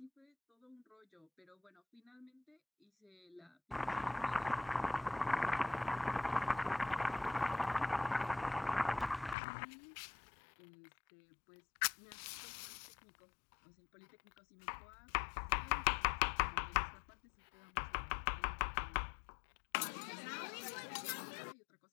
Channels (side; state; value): right; drops out; at 9.3 s